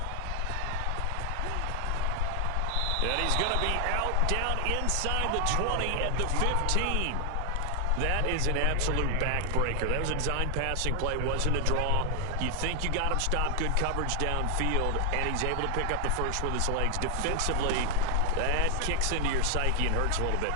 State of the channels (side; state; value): both; different; correlation 0.00